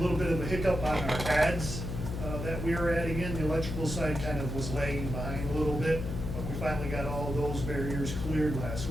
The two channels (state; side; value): noise; left; hum, 4 dB below the sound